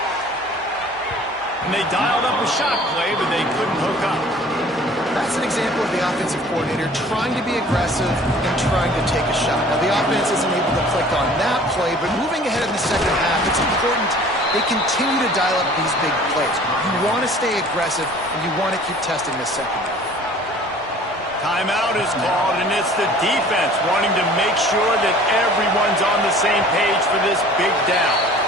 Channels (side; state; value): both; normal; correlation 0.49